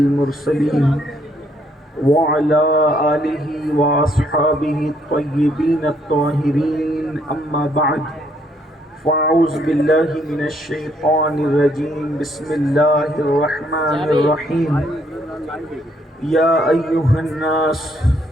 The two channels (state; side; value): normal; both; correlation 0.69